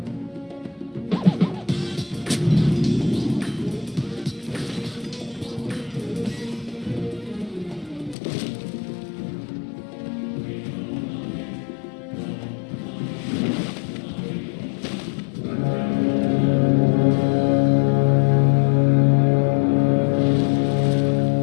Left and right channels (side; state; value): right; drops out; at 8.2 s